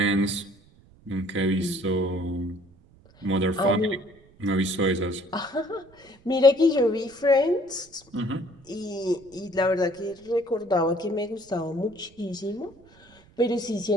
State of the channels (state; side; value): noise; right; rumble, 28 dB below the sound